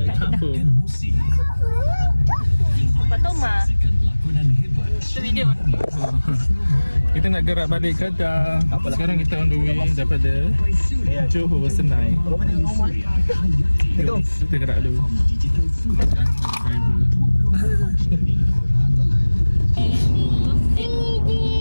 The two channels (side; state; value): both; inverted; correlation -1.00